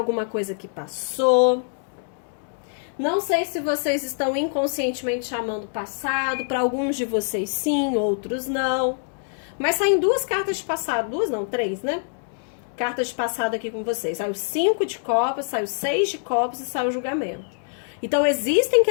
coisa que passou. Não sei se vocês estão inconscientemente chamando o passado. Para alguns de vocês sim, outros não. Mas saem duas cartas de passado. Duas não, 3, né? Cartas de passado aqui com vocês. Sai o 5 de copas, sai o 6 de copas e sai o julgamento. Então, existem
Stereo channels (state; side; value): silent; right; digital silence